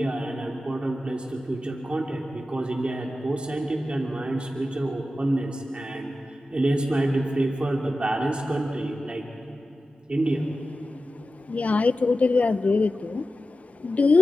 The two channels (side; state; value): both; normal; correlation 0.93